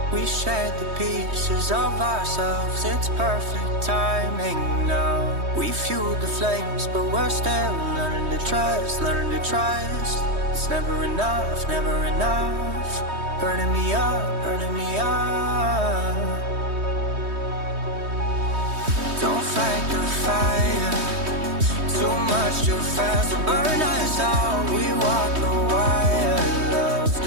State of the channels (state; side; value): late; left; 3.2 ms